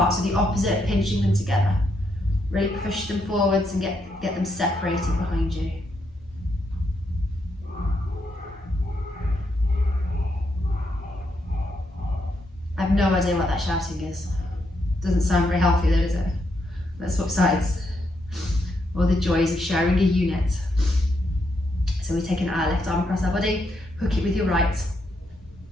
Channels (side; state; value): both; normal; correlation 0.79